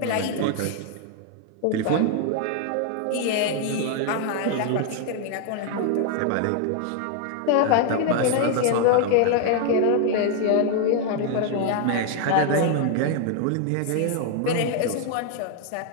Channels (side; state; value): both; different; correlation 0.00